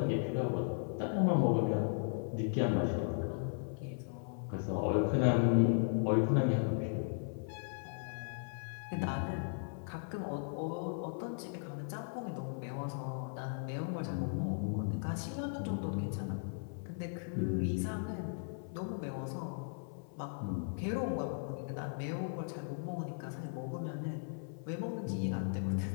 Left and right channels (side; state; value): right; silent; 53 dB below the other